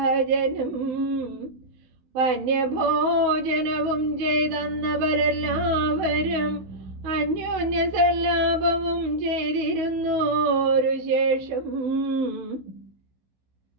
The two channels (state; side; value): late; left; 16 ms